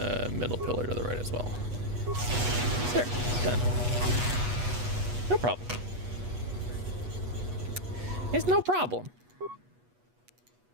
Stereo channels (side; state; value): left; late; 8.2 ms